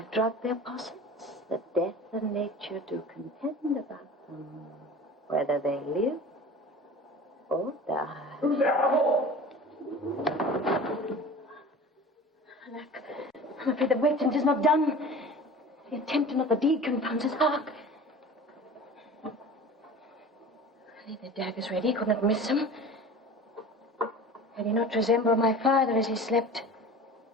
drugged their possets, that death and nature do contend about them, whether they live or die. Who's there? Alack, I'm afraid the waiting is not done. The attempt and not the deed confounds us. Hark! Leave the daggers ready, could not miss him. Had he not resembled my father as he slept,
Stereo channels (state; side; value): normal; both; correlation 0.38